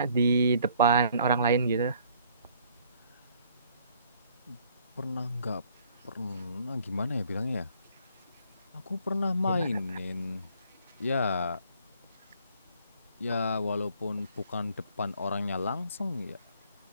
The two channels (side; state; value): both; inverted; correlation -0.62